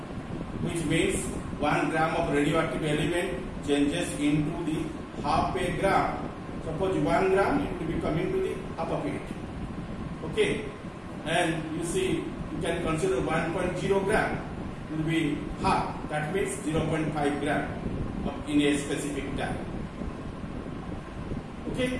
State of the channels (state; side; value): identical; both; correlation 1.00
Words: which means 1 gram of radioactive element changes into the half a gram. Suppose 1 gram, it will be coming to the half of it. Okay, and you see, you can consider 1.0 gram will be half. That means 0.5 gram in a specific time. Okay,